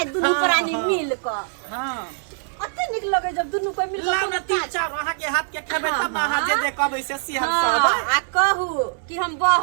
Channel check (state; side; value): silent; left; digital silence